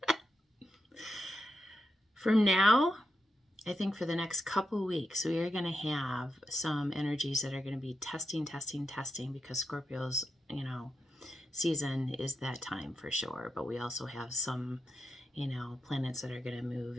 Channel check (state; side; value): normal; both; correlation 0.86